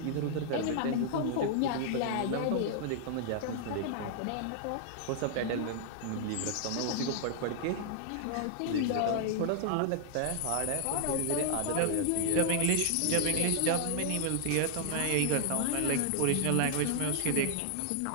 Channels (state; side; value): different; both; correlation -0.01